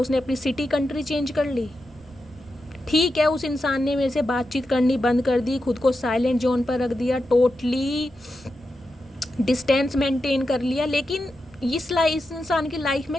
अपनी सिटी कंट्री चेंज कर ली। ठीक है, उस इंसान ने मेरे से बातचीत करनी बंद कर दी, खुद को साइलेंट जोन पर रख दिया, टोटली डिस्टेंस मेंटेन कर लिया, लेकिन इस इंसान की लाइफ में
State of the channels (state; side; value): noise; right; rumble, 25 dB below the sound